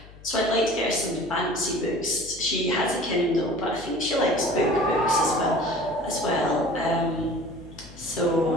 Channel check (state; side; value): noise; left; hum, 20 dB below the sound